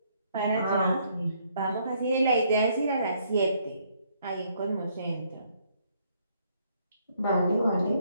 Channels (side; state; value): both; inverted; correlation -0.69